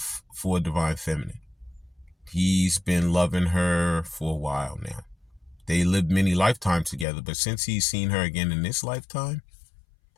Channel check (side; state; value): right; drops out; at 7.1 s